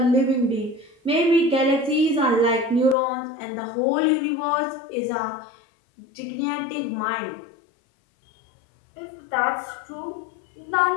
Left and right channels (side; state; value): right; drops out; at 3.0 s